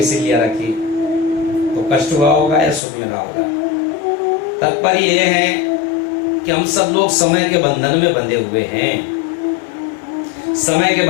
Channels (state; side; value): drops out; right; at 2.8 s